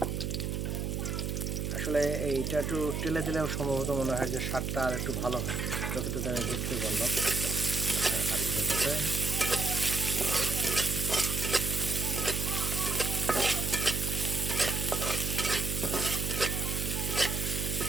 আসলে এইটা একটু টেলে দিলেও সম্ভবত মনে হয় যে স্বাদটা আর একটু ভালো হয়, যতটুকু আমি বুঝতে পারলাম আলুর চপে।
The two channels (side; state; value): right; noise; hum, 2 dB below the sound